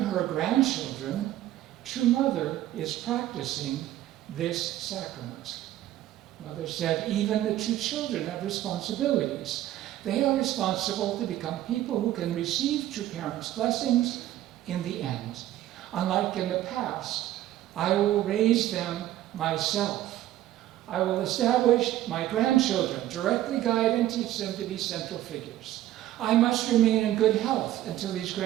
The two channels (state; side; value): quieter; left; 13.8 dB